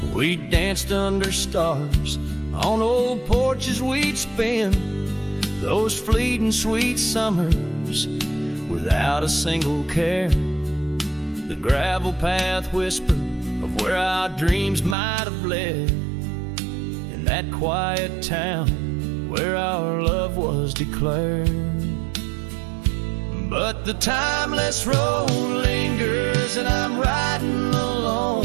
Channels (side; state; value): left; drops out; at 15.0 s